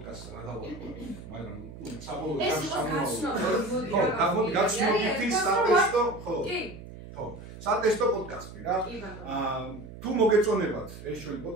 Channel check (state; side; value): noise; right; hum, 14 dB below the sound